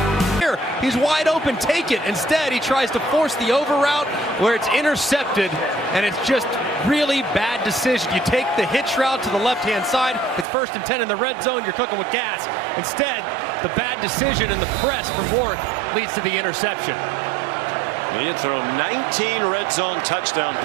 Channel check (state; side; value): drops out; left; at 10.5 s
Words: He's wide open, take it. Instead, he tries to force the over route where it's intercepted, and it's just really bad decision. You take the hitch route to the left-hand side, it's 1st and 10 in the red zone, you're cooking with gas. Instead, the bad decision and the press from Rourke leads to the interception. He had thrown 19 red zone touchdown